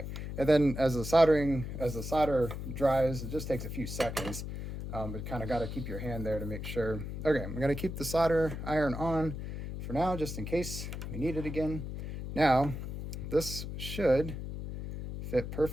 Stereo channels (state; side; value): noise; left; hum, 7 dB below the sound